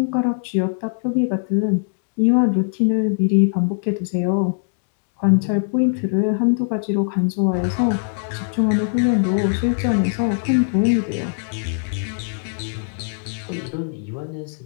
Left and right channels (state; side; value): silent; right; digital silence